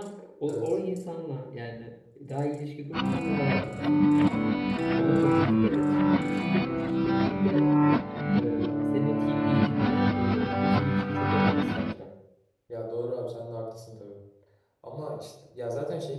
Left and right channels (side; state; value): both; identical; correlation 1.00